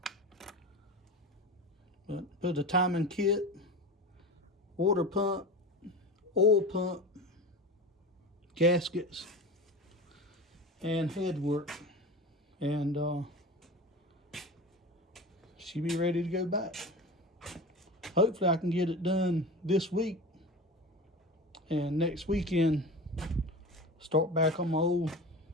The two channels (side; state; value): both; normal; correlation 0.30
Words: But put the timing kit, water pump, oil pump, gaskets, and head work. And she'll be ready to go back. Hopefully I can get it done this week. And next weekend, start back on my old